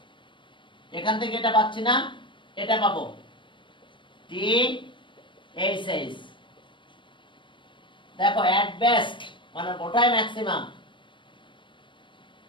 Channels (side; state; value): right; late; 0.24 ms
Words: এখান থেকে এটা পাচ্ছি না এটা পাবো টি এইচ এইচ দেখো এট বেস্ট মানে ওটাই ম্যাক্সিমাম